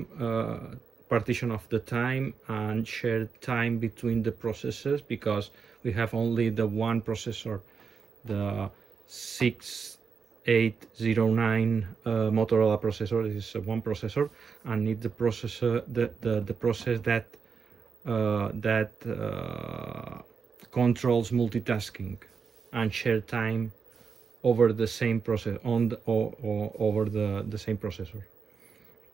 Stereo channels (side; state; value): left; quieter; 5.8 dB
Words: partition of the time and share time between the processes, because we have only the one processor, the 6809 Motorola processor. This is one processor, and need the processor the process that controls multitasking and share time over the same process over the same processor.